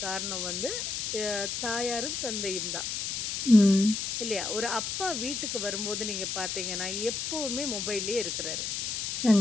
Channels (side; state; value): left; noise; hiss, 2 dB below the sound